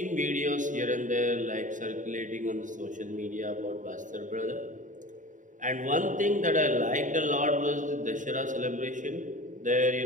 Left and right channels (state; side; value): late; left; 0.37 ms